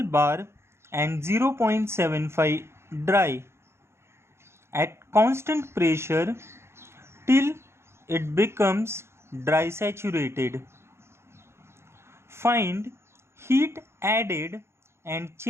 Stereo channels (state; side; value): late; left; 0.12 ms